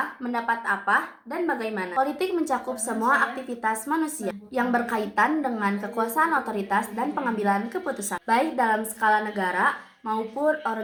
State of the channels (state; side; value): identical; both; correlation 1.00